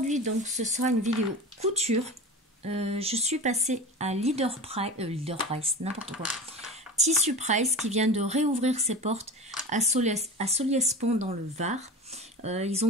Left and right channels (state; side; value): normal; both; correlation 0.31